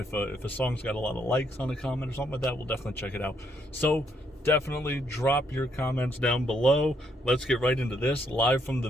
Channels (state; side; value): normal; both; correlation 0.73